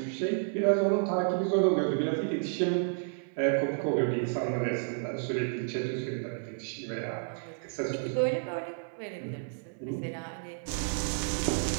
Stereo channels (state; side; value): silent; left; digital silence